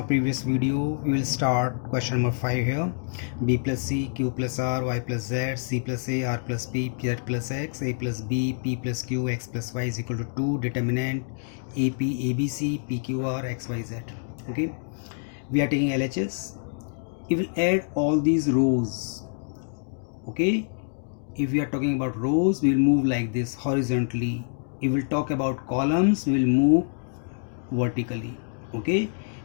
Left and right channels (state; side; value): silent; right; digital silence